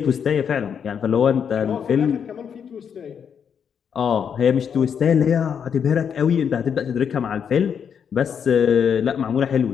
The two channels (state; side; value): quieter; right; 7.5 dB